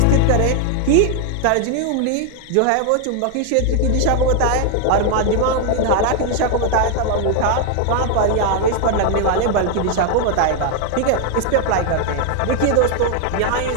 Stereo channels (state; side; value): different; both; correlation 0.00